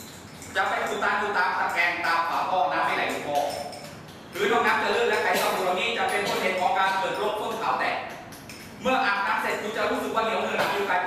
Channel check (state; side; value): identical; both; correlation 1.00